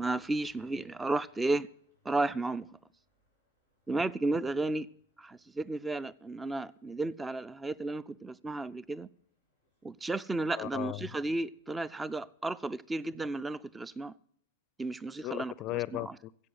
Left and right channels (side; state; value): both; normal; correlation 0.86